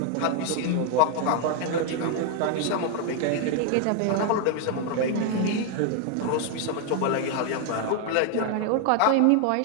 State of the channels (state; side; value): different; both; correlation 0.01